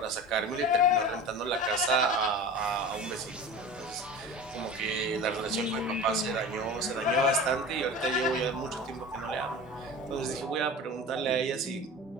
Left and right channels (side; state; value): both; normal; correlation 0.34